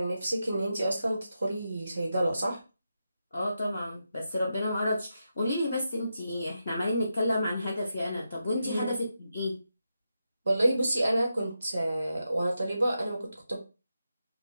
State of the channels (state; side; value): inverted; both; correlation -0.87